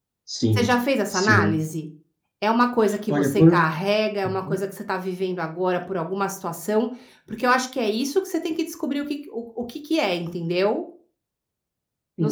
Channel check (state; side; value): identical; both; correlation 1.00